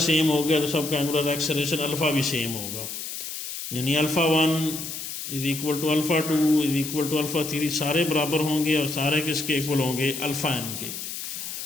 सेम हो गया तो सबका एंगुलर एक्सेलरेशन अल्फ़ा भी सेम होगा। यानी alpha 1 is equal to alpha 2 is equal to alpha 3, सारे बराबर होंगे और सारे किसके इक्वल होंगे, अल्फ़ा एन के।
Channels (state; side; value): noise; left; hiss, 7 dB below the sound